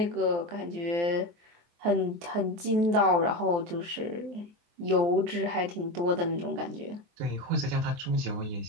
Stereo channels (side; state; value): left; late; 23 ms